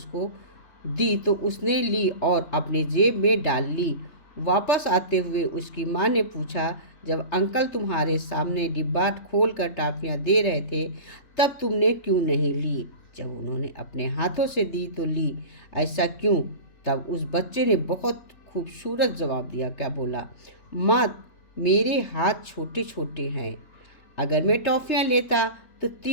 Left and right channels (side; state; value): right; late; 3.3 ms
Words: दी, तो उसने ली और अपने जेब में डाल ली। वापस आते हुए उसकी माँ ने पूछा, जब अंकल तुम्हारे सामने डिब्बा खोल कर टॉफ़ियाँ दे रहे थे, तब तुमने क्यों नहीं ली? जब उन्होंने अपने हाथों से दी तो ली, ऐसा क्यों? तब उस बच्चे ने बहुत खूबसूरत जवाब दिया। क्या बोला? माँ, मेरे हाथ छोटे छोटे हैं, अगर मैं टॉफ़ियाँ लेता तो